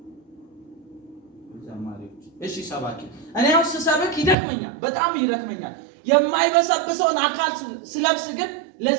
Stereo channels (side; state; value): left; drops out; at 4.4 s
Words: እሺ ሰባኪ እኔ አሁን ስሰብክ ይደክመኛል፣ በጣም ይደክመኛል። የማይበሰብሰውን አካል ስለብስ ግን